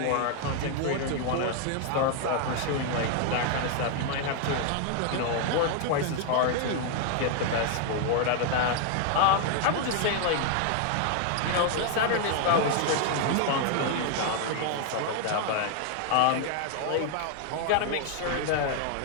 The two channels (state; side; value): different; both; correlation 0.00